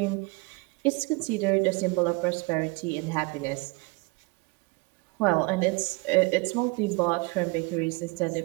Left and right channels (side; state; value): left; quieter; 27.7 dB